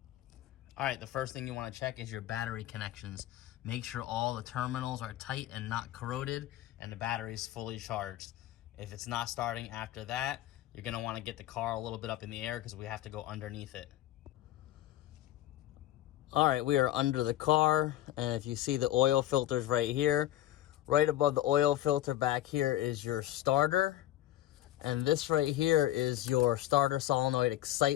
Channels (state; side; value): quieter; right; 13.9 dB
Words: All right, the first thing you want to check is your battery connections. Make sure all the terminals are tight and not corroded, and the battery is fully charged. If it's not starting after that, you're going to want to get the car a little bit up in the air because we have to go underneath it. All right, we are under the car, and if you see the oil filters right here, right above the oil filter back here is your starter, and this right here is your starter solenoid